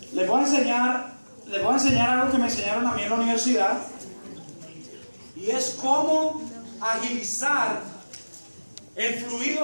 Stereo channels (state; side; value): inverted; both; correlation -1.00